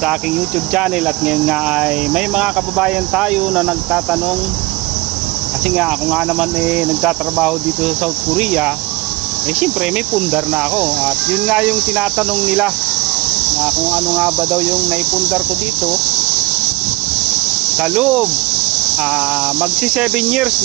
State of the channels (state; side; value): quieter; left; 22.0 dB